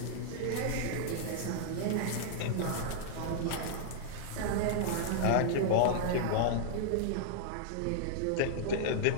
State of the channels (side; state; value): both; different; correlation -0.01